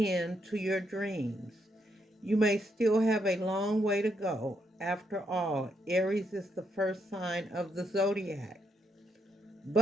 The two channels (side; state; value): both; normal; correlation 0.77